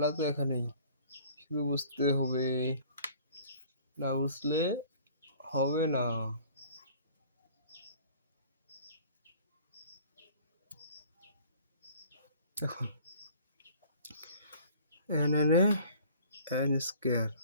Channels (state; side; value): inverted; both; correlation -0.51